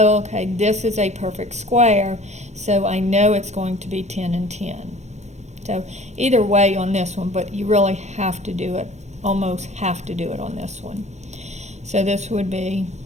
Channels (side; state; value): left; late; 0.33 ms